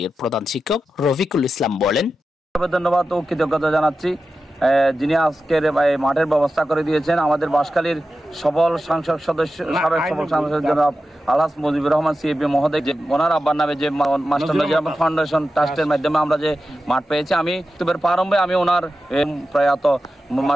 প্রধান শিক্ষক রফিকুল ইসলাম বলেন, ধন্যবাদ ও কৃতজ্ঞতা জানাচ্ছি যিনি আজকের মাঠের ব্যবস্থা করে দিয়েছেন। আমাদের বাঁশখালীর সবল সংসদ সদস্য, সাবেক সবল সংসদ জনাব আলহাজ মুজিবুর রহমান সিএপি মহোদয়, যে ওনার আব্বার নামে যে মাস্টার নজির আহমদ ফাউন্ডেশন ট্রাস্টের মাধ্যমে আমরা যে মাঠ পেয়েছি, আমি প্রারম্ভে আমি ওনার প্রয়াত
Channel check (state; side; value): normal; both; correlation 0.92